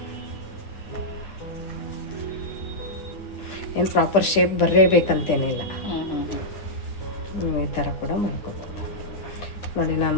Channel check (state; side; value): late; right; 10 ms